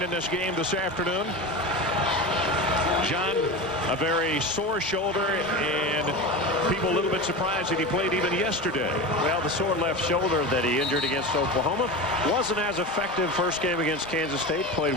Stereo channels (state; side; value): normal; both; correlation 0.26